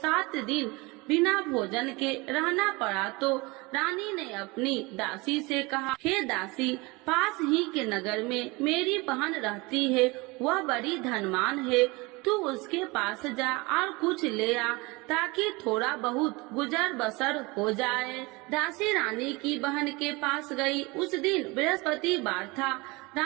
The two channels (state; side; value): quieter; left; 24.8 dB